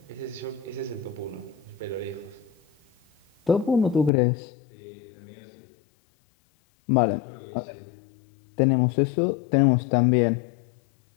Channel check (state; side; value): drops out; right; at 4.1 s